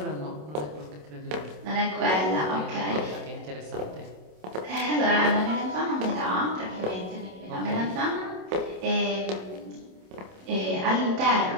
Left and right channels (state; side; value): late; left; 27 ms